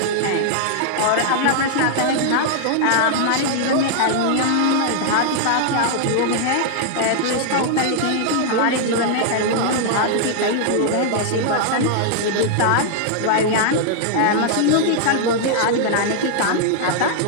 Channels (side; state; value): both; different; correlation -0.01